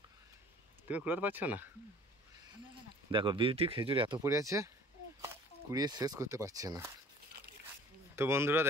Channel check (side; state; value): both; normal; correlation 0.50